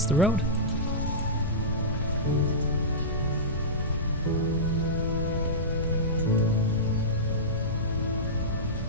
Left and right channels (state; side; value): normal; both; correlation -0.17